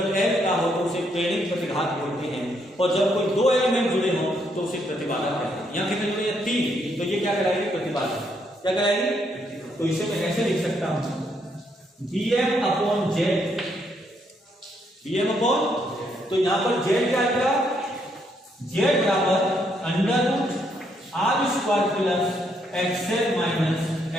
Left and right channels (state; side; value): normal; both; correlation 0.74